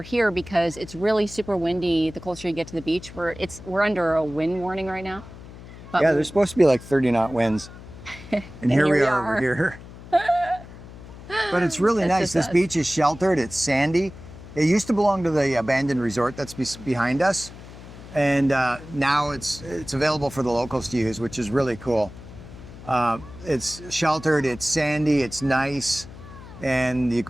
because it's really super windy the closer you get to the beach. We're under a wind warning right now. But yeah, there's supposed to be like 30 knot winds. And here we are over here. But it's really nice. This beach is sheltered. It's sandy. It used to belong to the abandoned resort that's behind us. And now it's available for the locals to use, which is really cool. It's sheltered, it's sandy, it's nice. And you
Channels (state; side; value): noise; left; hum, 16 dB below the sound